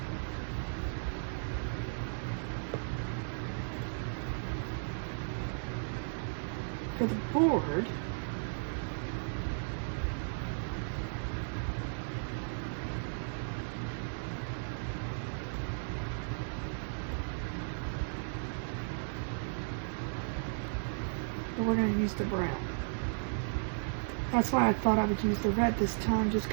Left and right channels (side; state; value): left; silent; digital silence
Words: for the board. But we're going to use the brown. That's why I thought I would use the red this time, just